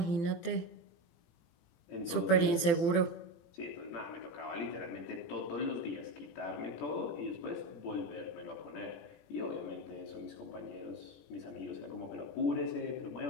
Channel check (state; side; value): late; right; 18 ms